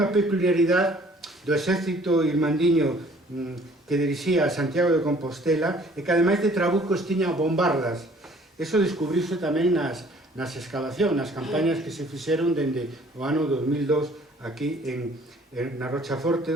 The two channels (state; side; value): normal; both; correlation 0.56